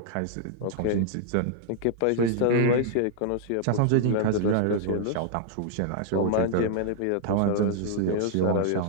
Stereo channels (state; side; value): different; both; correlation -0.01